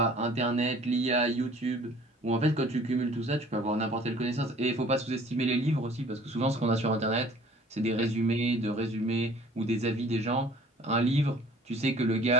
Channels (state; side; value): normal; both; correlation 0.52